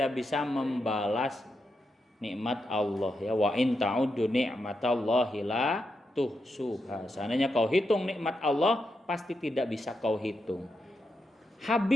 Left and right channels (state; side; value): normal; both; correlation 0.85